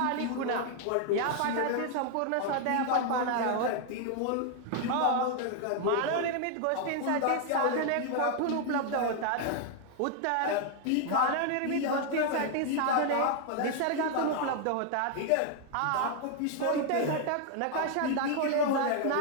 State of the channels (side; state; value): both; different; correlation 0.00